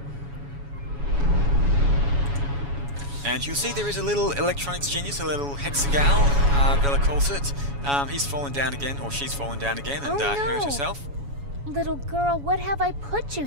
And you'll see there is a little electronics genius, a little hexagal, Bella calls it. He's fallen down again, or she's fallen down again, and hurt herself. Little girl, what have I put you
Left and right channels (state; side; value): late; left; 7.1 ms